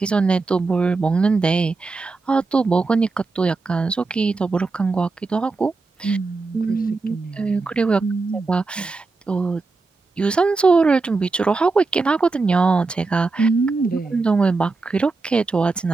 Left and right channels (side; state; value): left; quieter; 3.9 dB